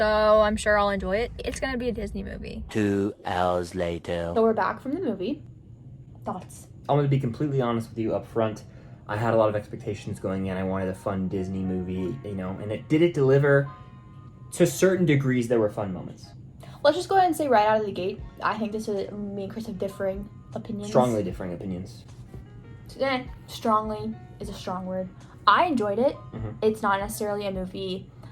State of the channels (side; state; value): both; identical; correlation 1.00